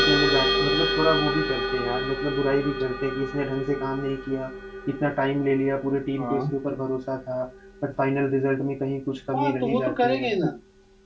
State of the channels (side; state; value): both; identical; correlation 1.00